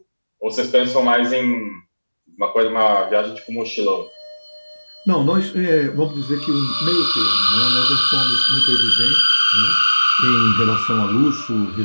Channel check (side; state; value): both; inverted; correlation -1.00